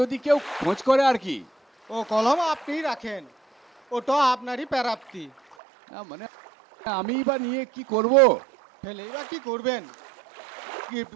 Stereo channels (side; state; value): left; drops out; at 5.6 s